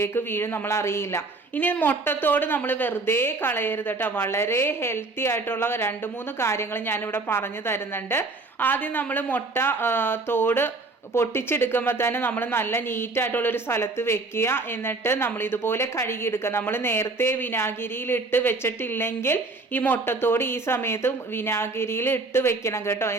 വീഴും, നമ്മൾ അറിയില്ല. ഇനി മുട്ടത്തോട് നമ്മൾ വെറുതെ കളയരുത് കേട്ടോ. വളരെ ഹെൽത്തി ആയിട്ടുള്ള 2-3 കാര്യങ്ങൾ ഞാനിവിടെ പറഞ്ഞു തരുന്നുണ്ട്. ആദ്യം നമ്മൾ മുട്ട തോട് പൊട്ടിച്ചെടുക്കുമ്പോൾ തന്നെ നമ്മൾ നല്ല നീറ്റായിട്ടുള്ളൊരു സ്ഥലത്ത് വെക്കുക. എന്നിട്ട് നമ്മൾ ഇതുപോലെ കഴുകിയെടുക്കുക. നമ്മൾ നേരത്തെ വിനാഗിരിയിൽ ഇട്ട് വെച്ചിട്ടില്ലെങ്കിൽ ഈ മുട്ടത്തോട് ഈ സമയത്ത് വിനാഗിരിയിൽ ഇട്ട് വെക്കണം കേട്ടോ.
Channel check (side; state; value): left; quieter; 3.5 dB